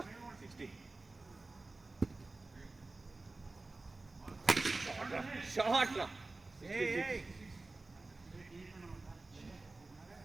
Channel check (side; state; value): left; quieter; 3.3 dB